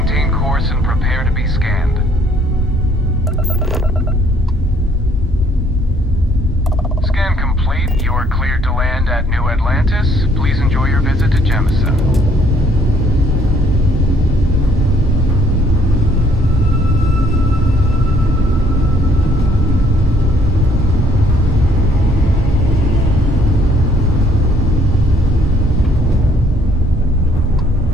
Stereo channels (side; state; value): both; normal; correlation 0.64